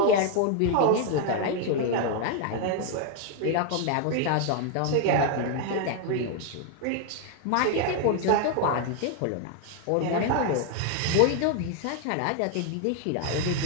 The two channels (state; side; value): different; both; correlation 0.00